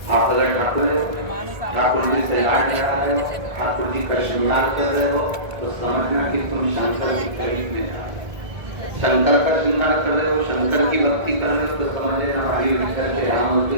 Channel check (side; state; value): left; late; 1.7 ms